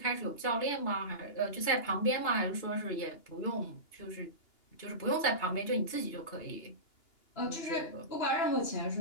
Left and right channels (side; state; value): right; late; 2.8 ms